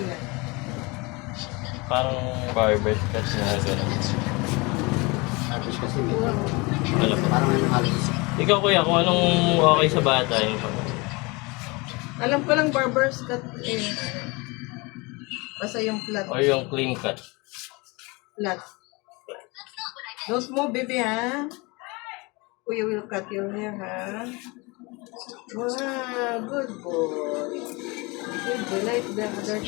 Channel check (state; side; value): quieter; right; 26.3 dB